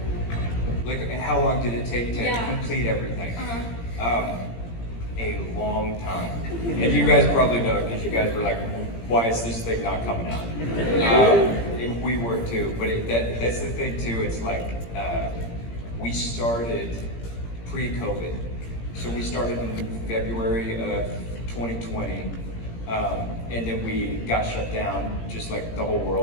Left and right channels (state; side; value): late; right; 17 ms